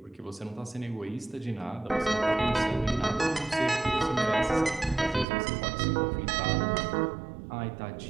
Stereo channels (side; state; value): left; drops out; at 5.2 s